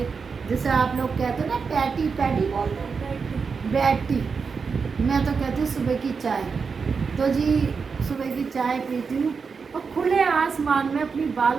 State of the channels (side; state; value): left; quieter; 5.4 dB